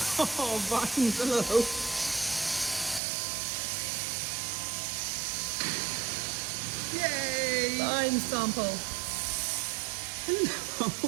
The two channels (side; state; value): left; drops out; at 3.0 s